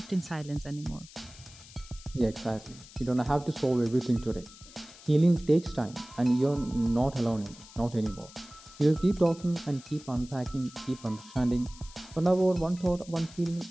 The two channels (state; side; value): noise; left; hiss, 20 dB below the sound